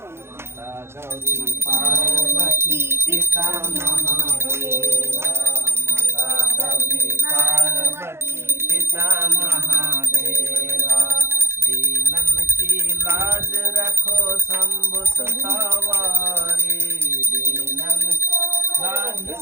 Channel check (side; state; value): left; late; 0.12 ms